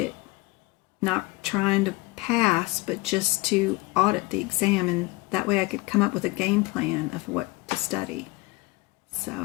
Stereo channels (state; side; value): quieter; right; 21.9 dB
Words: not trying to pass, but just to audit the exam, and that way I could come up with a game plan of what to study. So